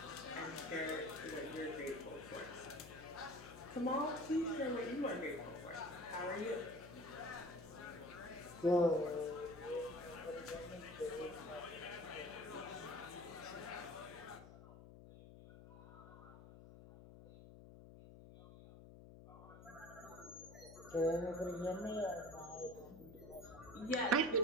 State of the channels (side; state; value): left; noise; hum, 16 dB below the sound